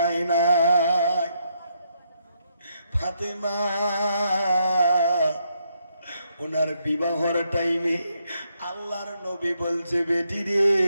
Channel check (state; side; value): inverted; both; correlation -0.77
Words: না। ফাতেমা ওনার বিবাহর টাইমে আল্লাহর নবী বলছে, বেটি রে,